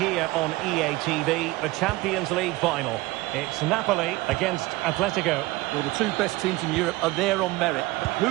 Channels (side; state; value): left; quieter; 20.3 dB